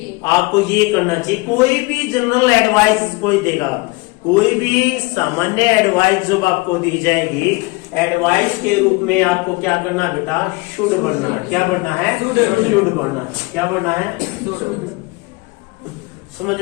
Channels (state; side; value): quieter; right; 24.9 dB